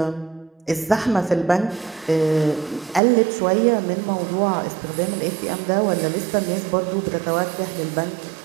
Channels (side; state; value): left; drops out; at 3.0 s